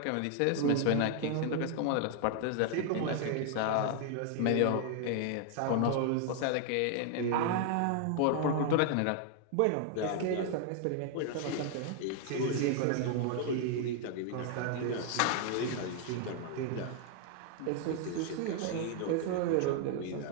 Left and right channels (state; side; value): different; both; correlation 0.00